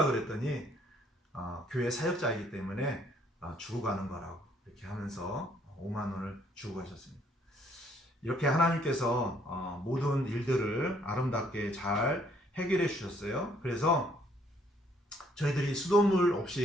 그랬더니 교회 사역자이기 때문에 주고 가는 거라고 이렇게 하면서 5만 원을 주고 가셨습니다. 이렇게 하나님께서 모든 일들을 아름답게 잘 해결해 주셨어요. 그래서 저희들이 수돗물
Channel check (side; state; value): both; normal; correlation 0.66